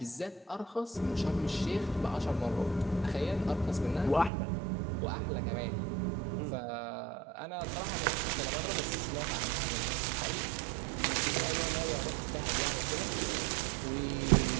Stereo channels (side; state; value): left; drops out; at 4.3 s